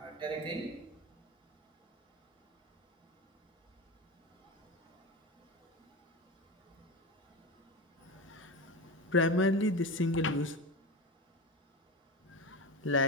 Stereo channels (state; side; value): normal; both; correlation 0.23